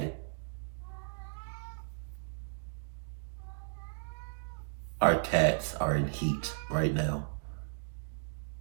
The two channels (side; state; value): left; silent; digital silence